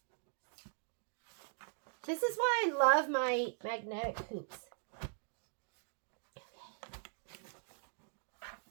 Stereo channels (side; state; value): left; silent; digital silence